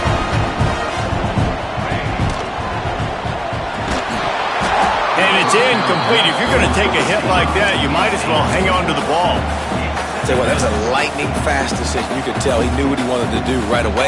And it's incomplete. If you're going to take a hit like that, you might as well hang on to the ball. Tell you what, that was a lightning-fast decision. You could tell he knew what he wanted to do right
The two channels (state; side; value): identical; both; correlation 1.00